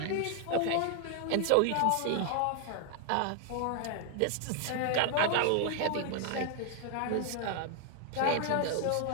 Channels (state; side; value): different; both; correlation 0.00